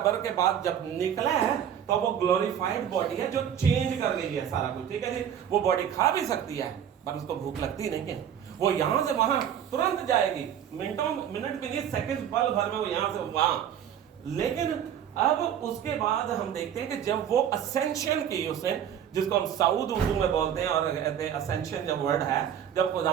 के बाद जब निकला है तो वो ग्लोरीफाइड बॉडी है जो चेंज कर गई है सारा कुछ, ठीक है जी। वो बॉडी खा भी सकती है पर उसको भूख लगती नहीं है, वो यहां से वहां तुरंत जाएगी, मिनट भी नहीं, सेकंड पल भर में वो यहां से वहां। लेकिन अब उसके बाद हम देखते हैं कि जब वो असेंशन की उसने, जिसको हम साउद उर्दू में बोलते हैं और कहते हैं असेंशन जब वर्ड है, जब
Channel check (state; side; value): quieter; left; 9.3 dB